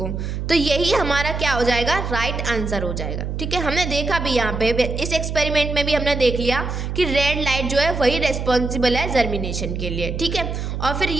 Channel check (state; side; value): noise; right; hum, 4 dB below the sound